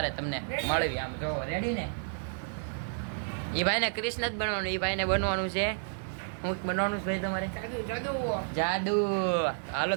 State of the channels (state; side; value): silent; left; digital silence